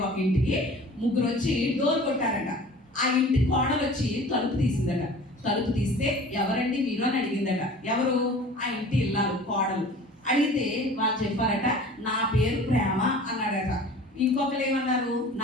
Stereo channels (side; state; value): both; normal; correlation 0.43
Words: ఒక ఇంటికి ముగ్గురు వచ్చి డోర్ కొట్టారట. ఆ ఇంటి కోడలు వచ్చి తలుపు తీసిందట. తలుపు తీస్తే ఎవరండి మీరు అని అడిగిందట. ఎవరు? ఆ ఇంటి ఇల్లాలు కోడలు. అడిగితే వాళ్ళు చెప్పారట, నా పేరు ప్రేమ అన్నాడట. ఇంకొకరు ఏమన్నారు,